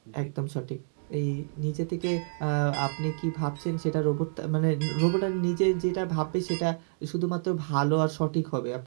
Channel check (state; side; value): silent; left; digital silence